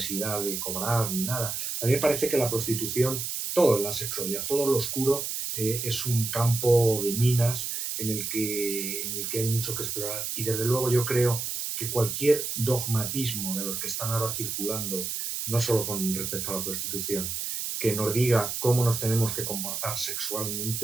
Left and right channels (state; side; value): noise; right; hiss, 3 dB below the sound